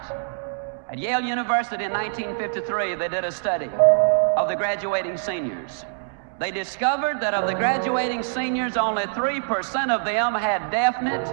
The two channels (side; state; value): left; silent; digital silence